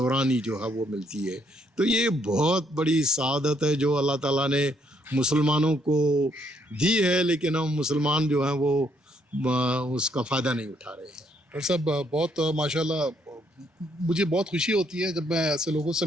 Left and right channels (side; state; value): both; normal; correlation 0.71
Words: ہی جو ہے وہ ملتی ہے. تو یہ بہت بڑی سعادت ہے جو اللہ تعالیٰ نے مسلمانوں کو دی ہے, لیکن ہم مسلمان جو ہیں وہ اس کا فائدہ نہیں اٹھا رہے ہیں. ڈاکٹر صاحب بہت ماشاءاللہ مجھے بہت خوشی ہوتی ہے جب میں ایسے لوگوں سے